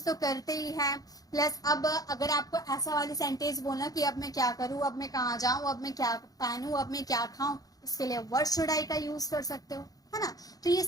तो करते ही है. प्लस अब अगर आपको ऐसा वाली सेंटेंस बोलना कि अब मैं क्या करूं, अब मैं कहाँ जाऊं, अब मैं क्या पहनूं, अब मैं क्या खाऊं, इसके लिए वर्ड शुड आई का यूज कर सकते हो, है ना. तो ये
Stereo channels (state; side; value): late; right; 0.18 ms